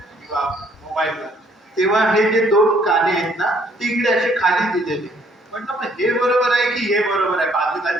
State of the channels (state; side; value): normal; both; correlation 0.64